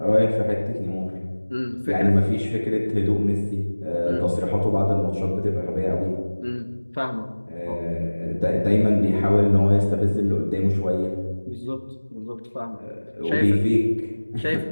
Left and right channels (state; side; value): inverted; both; correlation -1.00